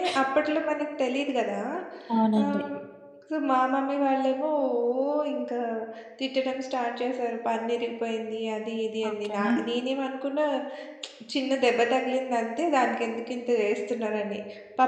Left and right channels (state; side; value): identical; both; correlation 1.00